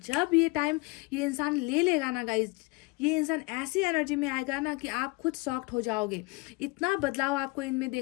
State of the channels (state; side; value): quieter; right; 25.3 dB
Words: जब ये टाइम ये इंसान ले लेगा ना गाइज, ये इंसान ऐसी एनर्जी में आएगा ना कि आप खुद शॉक्ड हो जाओगे। इतना बदलाव आपको इनमें